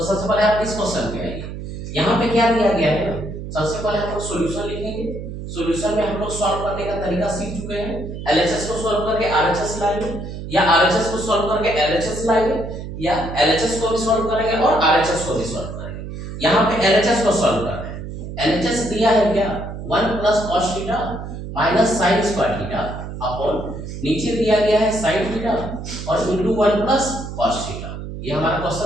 सबसे पहले आप इस क्वेश्चन पे आइए। यहाँ पे क्या दिया गया है ना, सबसे पहले हम लोग सॉल्यूशन लिखेंगे। सॉल्यूशन में हम लोग सॉल्व करने का तरीका सीख चुके हैं। एलएचएस को सॉल्व करके आरएचएस लाएंगे, या आरएचएस को सॉल्व करके एलएचएस लाएंगे, या एलएचएस को भी सॉल्व करेंगे और आरएचएस को भी सॉल्व करेंगे। यहाँ पे एलएचएस को सॉल्व कर रहे हैं। एलएचएस दिया है क्या? 1 plus cos theta minus sin square theta upon नीचे दिया गया है sin थीटा और इनटू 1 प्लस cos थीटा। ये हमारा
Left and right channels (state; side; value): noise; right; hum, 8 dB below the sound